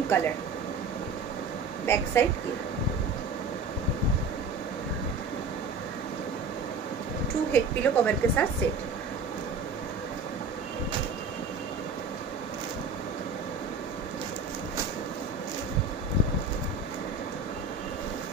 colour, back side की। 2 हेड पिलो कवर के साथ सेट।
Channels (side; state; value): left; quieter; 4.0 dB